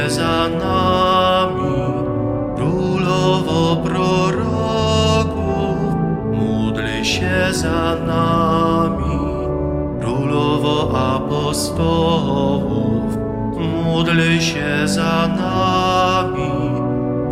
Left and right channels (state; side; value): identical; both; correlation 1.00